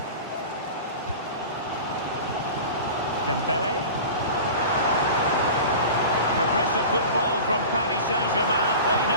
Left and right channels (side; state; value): both; inverted; correlation -0.35